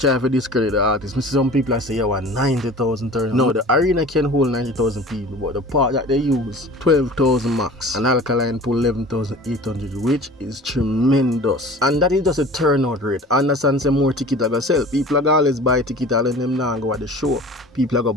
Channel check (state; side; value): normal; both; correlation 0.42